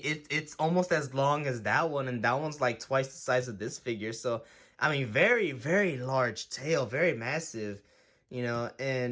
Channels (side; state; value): both; identical; correlation 1.00